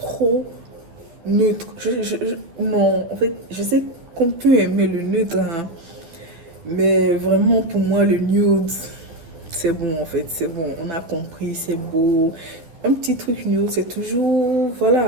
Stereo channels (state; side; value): late; left; 12 ms